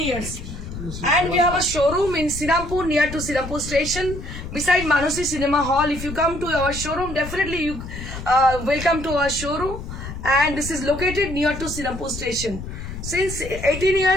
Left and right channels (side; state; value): left; noise; rumble, 9 dB below the sound